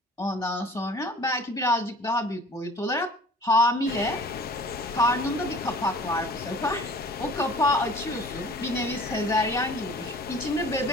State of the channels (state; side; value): normal; both; correlation 0.47